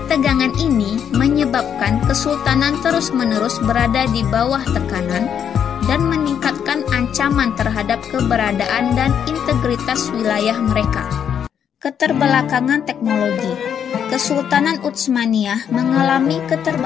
ini menyebabkan kesultanan terus-menerus berada di bawah tekanan dan meningkatkan ancaman terhadap keberadaan dan integritas wilayah mereka. Keterbelakangan teknologi. Kesultanan Utsmaniyah mengalami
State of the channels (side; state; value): right; quieter; 8.3 dB